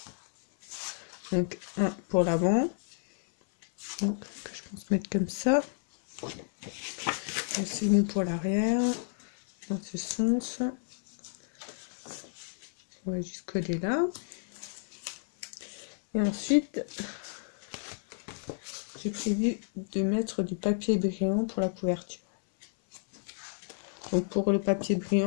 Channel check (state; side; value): silent; right; 57 dB below the other